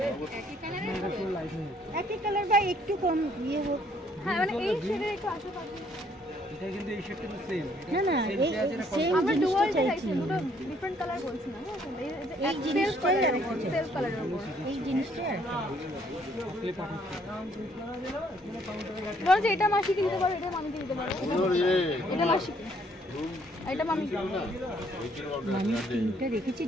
একই কালার বা একটু কম ইয়ে হোক। হ্যাঁ মানে এই শেডের একটু আসো কাকিমা। এটা কিন্তু এই শেডটা তো সেম। না না এই সেম আমরা জিনিসটা ডুয়াল চাইছি। চাইছি, দুটো ডিফারেন্ট কালার বলছি না। এই জিনিসটাই আর কি সেলফ কালারের উপর এই জিনিসটা আর বলো যে এটা মাসিকে দিতে পারো, এটা মামিকে দিতে পারো, এটা মাসি, এটা মামি। আমি তিনটা রেখেছি,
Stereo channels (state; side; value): normal; both; correlation 0.65